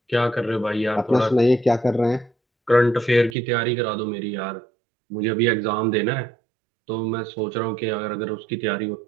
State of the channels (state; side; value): drops out; left; at 3.4 s